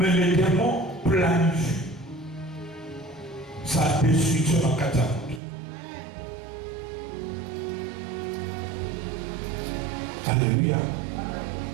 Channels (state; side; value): drops out; left; at 5.4 s